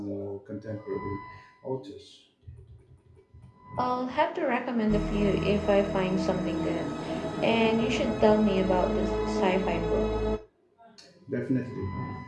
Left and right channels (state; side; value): identical; both; correlation 1.00